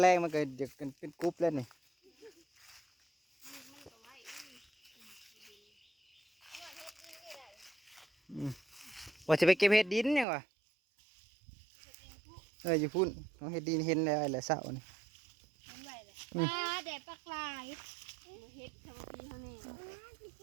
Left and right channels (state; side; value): drops out; left; at 10.2 s